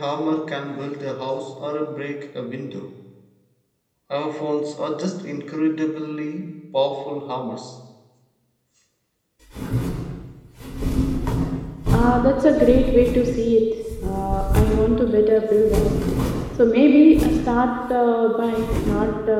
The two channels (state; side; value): identical; both; correlation 1.00